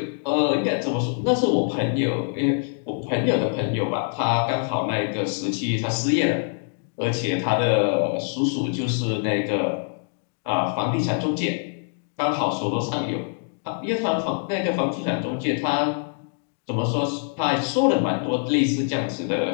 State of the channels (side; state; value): right; silent; 58 dB below the other